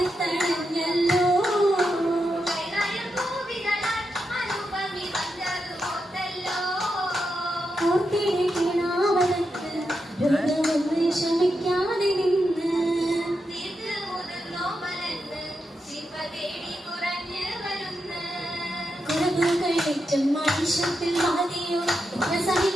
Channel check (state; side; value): normal; both; correlation 0.86